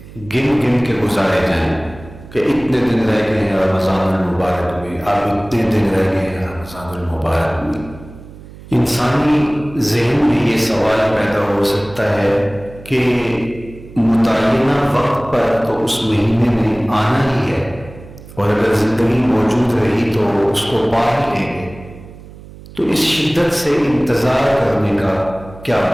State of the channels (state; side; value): noise; right; hum, 18 dB below the sound